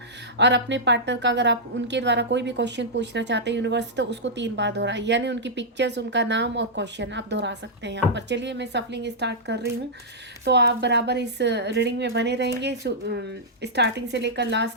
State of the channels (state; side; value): normal; both; correlation -0.10